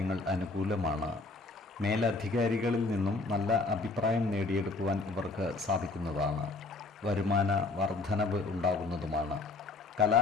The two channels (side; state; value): right; quieter; 3.5 dB